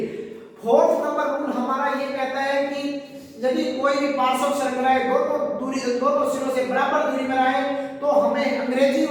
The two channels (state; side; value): identical; both; correlation 1.00